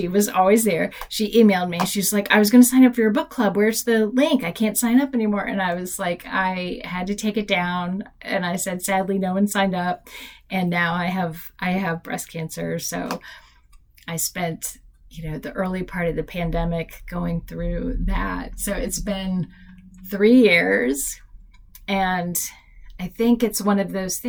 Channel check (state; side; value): identical; both; correlation 1.00